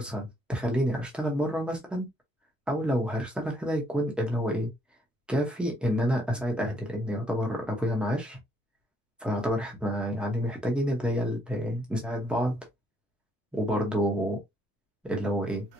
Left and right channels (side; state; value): both; normal; correlation 0.69